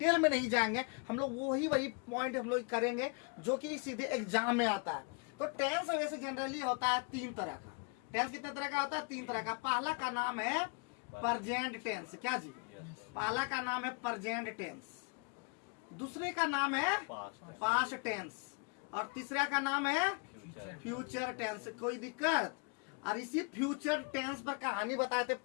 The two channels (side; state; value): right; quieter; 34.3 dB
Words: में नहीं जाएंगे। हम लोग वही पॉइंट हम लोग करेंगे जो कि सीधे एग्जाम में आता है। तो टेंस वैसे जनरली होता है 3 तरह का। टेंस कितने तरह का होता है? 3 तरह का। पहला का नाम है प्रेजेंट टेंस। क्या जी? पहला का नाम है प्रेजेंट टेंस, दूसरे का नाम है पास्ट टेंस, और तीसरा का नाम है फ्यूचर टेंस। कोई दिक्कत? और इसी फ्यूचर टेंस पर कहानी बताए थे